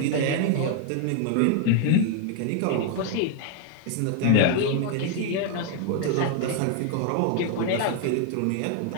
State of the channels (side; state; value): both; different; correlation 0.01